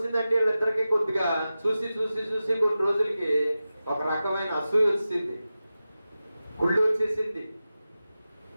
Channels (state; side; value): inverted; both; correlation -0.94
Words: వీళ్ళిద్దరికి కొద్దిగా చూసి కొన్ని రోజులకి ఒక రకమైన అసూయ వచ్చింది, గుళ్ళు వచ్చేసింది.